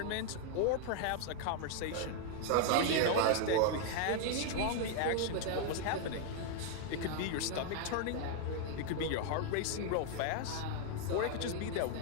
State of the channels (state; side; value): different; both; correlation 0.00